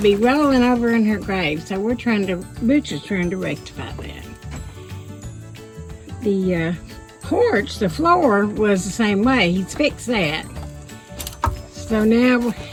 be rolling over in her grave, so Butch is trying to rectify that. The porch, the floor was the same way. He's fixed that. So now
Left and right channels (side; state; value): both; identical; correlation 1.00